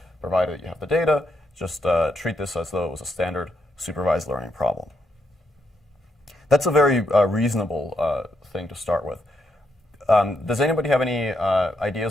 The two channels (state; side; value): normal; both; correlation 0.79